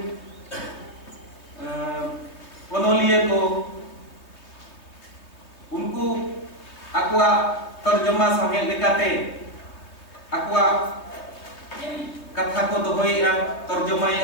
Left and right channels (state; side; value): late; right; 3.2 ms